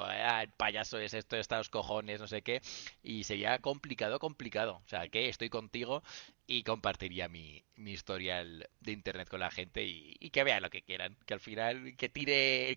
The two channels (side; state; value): left; silent; digital silence